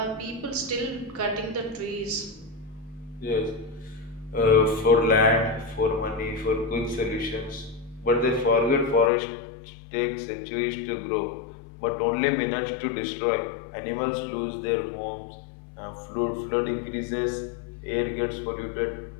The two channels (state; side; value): drops out; right; at 9.1 s